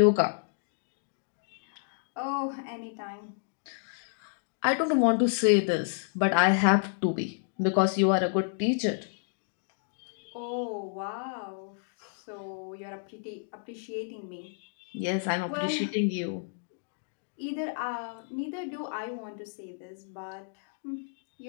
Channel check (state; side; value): silent; right; digital silence